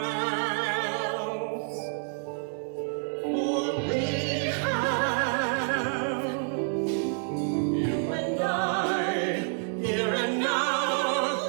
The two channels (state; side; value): silent; left; 56 dB below the other